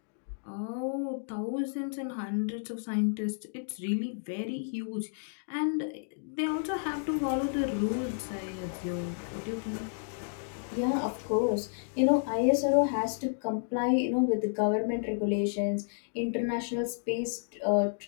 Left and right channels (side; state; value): right; silent; digital silence